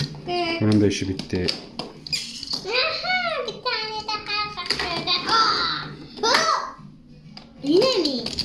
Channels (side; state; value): both; identical; correlation 1.00